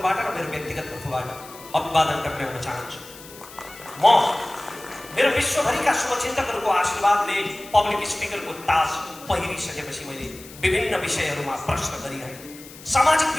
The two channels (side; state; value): left; noise; hiss, 18 dB below the sound